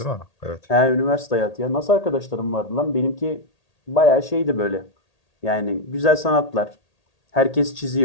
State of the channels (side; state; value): right; late; 1.8 ms